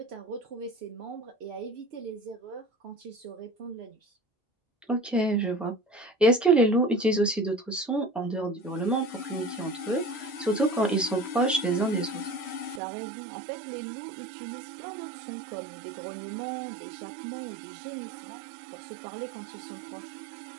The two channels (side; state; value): left; drops out; at 12.8 s